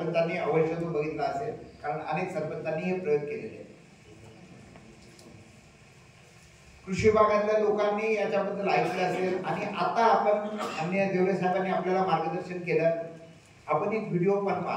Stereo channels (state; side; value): identical; both; correlation 1.00